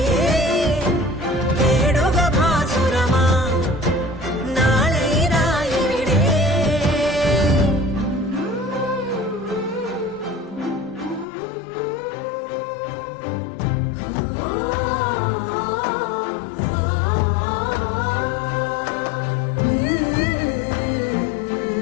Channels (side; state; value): right; drops out; at 11.2 s